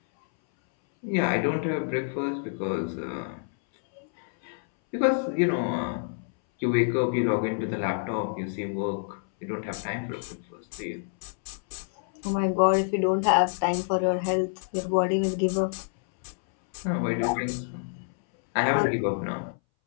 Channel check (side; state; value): right; silent; 60 dB below the other